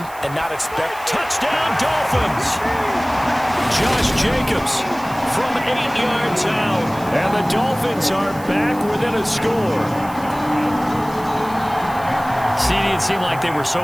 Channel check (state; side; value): noise; right; hiss, 19 dB below the sound